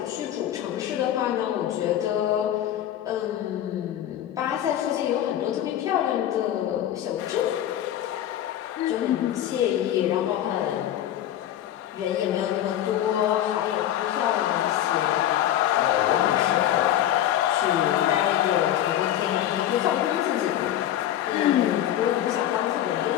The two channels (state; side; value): quieter; right; 11.7 dB